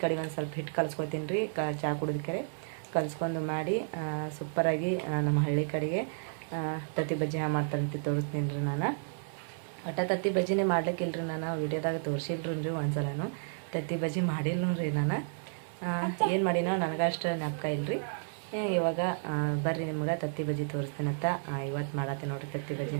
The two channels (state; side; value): silent; left; digital silence